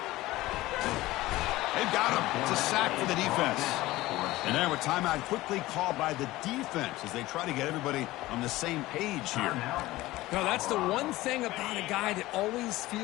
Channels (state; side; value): quieter; right; 17.9 dB